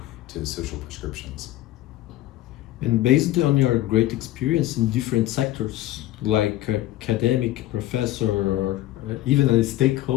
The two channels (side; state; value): right; quieter; 15.1 dB